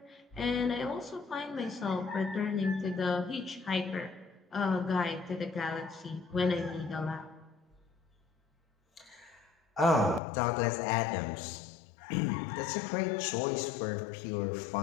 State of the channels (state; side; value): drops out; right; at 10.2 s